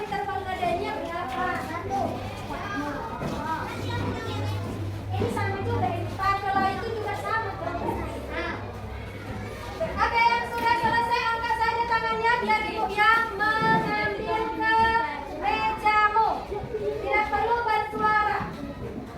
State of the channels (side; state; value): both; identical; correlation 1.00